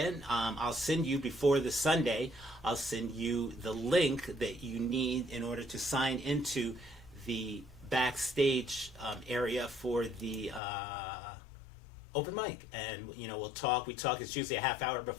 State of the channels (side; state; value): right; drops out; at 10.6 s